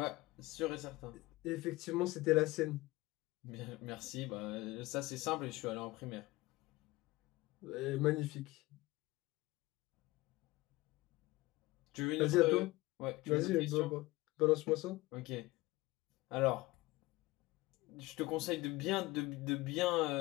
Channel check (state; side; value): quieter; right; 20.4 dB